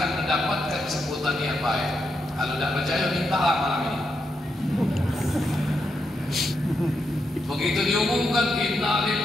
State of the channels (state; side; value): normal; both; correlation 0.83